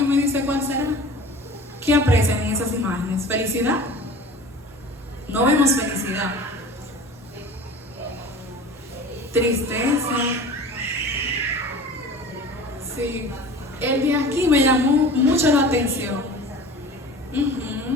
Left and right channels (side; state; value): both; normal; correlation 0.40